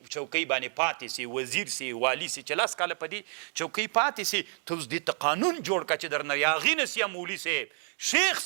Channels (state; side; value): silent; left; 56 dB below the other